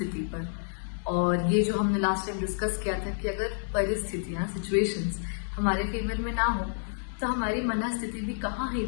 पर, और ये जो हमने लास्ट टाइम डिस्कस किया था कि अगर परिस्थितियाँ, सिचुएशंस हमारे फेवर में ना हो तो हमारी मन स्थिति भी कहाँ ही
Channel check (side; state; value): right; silent; digital silence